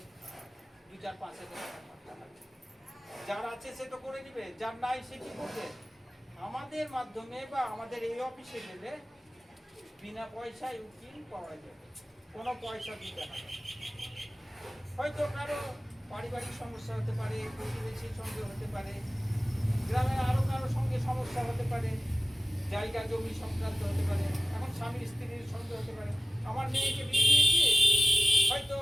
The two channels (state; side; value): normal; both; correlation 0.94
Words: 2-4-5 হাজার টাকা করতে হবে। যার আছে সে তো করে দিবে, যার নাই সে কি করবে? আমাদের মাধ্যমে বা আমাদের এই অফিসে গেলে বিনা পয়সায় উকিল পাওয়া যাবে, কোনো পয়সা দিতে হবে। হয়তো কারো পারিবারিক সমস্যা হতে পারে, প্রতিবেশীর সঙ্গে হতে পারে, গ্রামের আরো কারো সঙ্গে সমস্যা হতে পারে, জায়গা জমি সংক্রান্ত হতে পারে, এখন স্বামী স্ত্রীর সঙ্গে হতে পারে। আমার মেয়েকে বিয়ে দিয়েছি, হয়তো